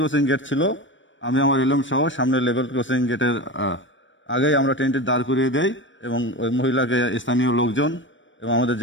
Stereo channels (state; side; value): late; right; 0.55 ms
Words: গেট ছিল, আমি আমার এলএম সহ সামনে লেভেল ক্রসিং গেটের আগেই আমরা ট্রেনটি দাঁড় করিয়ে দেই এবং ওই মহিলাকে স্থানীয় লোকজন এবং আমাদের